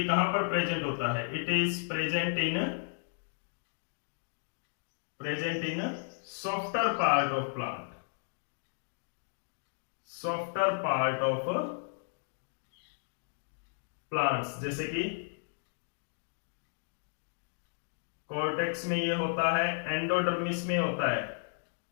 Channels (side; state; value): right; silent; digital silence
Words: कहां पर प्रेजेंट होता है, it is present in softer part of plant, softer part of plants, जैसे कि कॉर्टेक्स में ये होता है, एंडोडर्मिस में होता है,